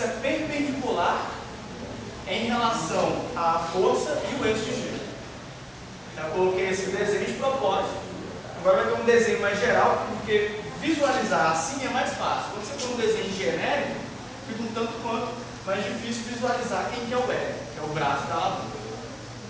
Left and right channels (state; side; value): identical; both; correlation 1.00